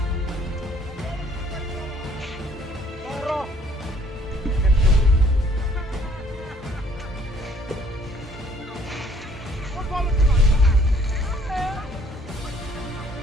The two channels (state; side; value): normal; both; correlation 0.61